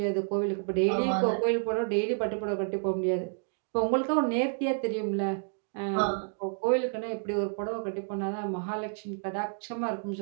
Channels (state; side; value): silent; left; digital silence